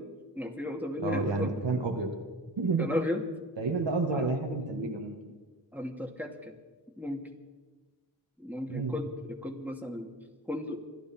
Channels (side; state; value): both; normal; correlation 0.36